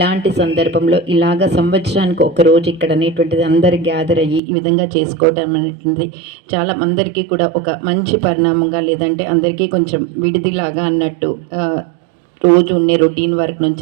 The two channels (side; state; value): left; drops out; at 4.4 s